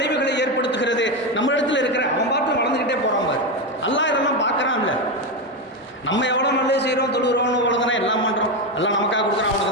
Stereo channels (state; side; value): normal; both; correlation 0.12